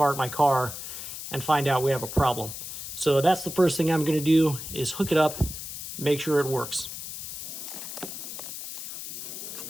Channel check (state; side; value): noise; left; hiss, 8 dB below the sound